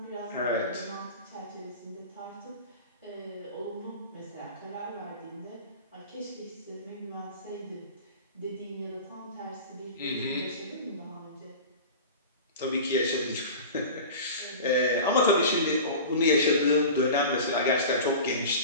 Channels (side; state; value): both; inverted; correlation -0.34